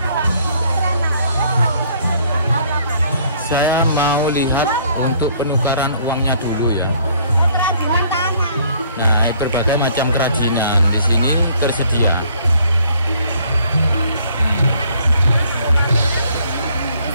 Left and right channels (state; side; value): inverted; both; correlation -0.62